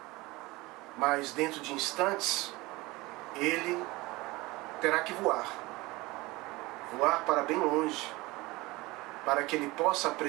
mas dentro de instantes, ele terá que voar para bem longe, para que ele possa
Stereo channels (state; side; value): quieter; left; 21.6 dB